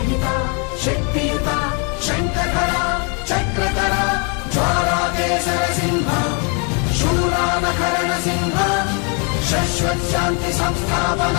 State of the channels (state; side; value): quieter; right; 36.2 dB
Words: शक्तियुता शङ्खधरा चक्रधरा ज्वालाकेसर सिंह शूरानकरण सिंह शाश्वत शांति